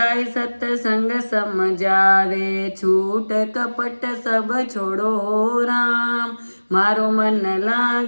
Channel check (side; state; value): both; inverted; correlation -1.00